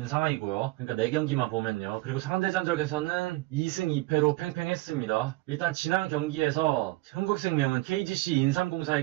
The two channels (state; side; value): quieter; left; 20.1 dB